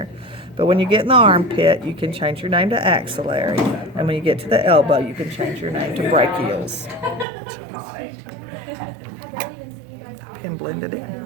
But when you get in the armpit, you can change your name to axillary. And when you get to the elbow, you can change your name to brachials. And blend it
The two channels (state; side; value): drops out; left; at 7.2 s